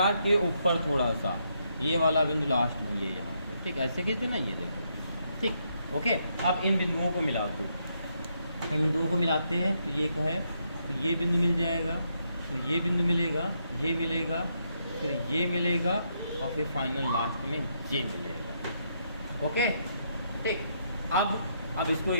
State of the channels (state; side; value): inverted; both; correlation -0.77